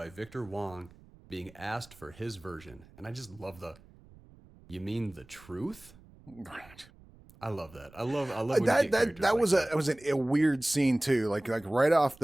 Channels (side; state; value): right; noise; rumble, 24 dB below the sound